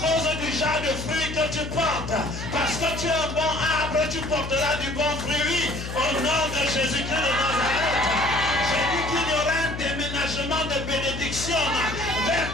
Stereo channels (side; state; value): left; noise; hum, 7 dB below the sound